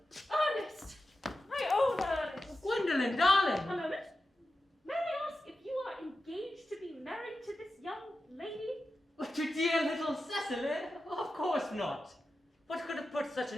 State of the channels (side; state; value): both; normal; correlation 0.92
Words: Ernest! My own Ernest! Gwendolyn, darling! A moment. May I ask if you are engaged to be married to this young lady? To dear little Cecily? Of course not. What could have put such